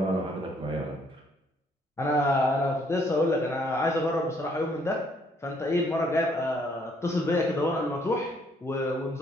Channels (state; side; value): normal; both; correlation 0.67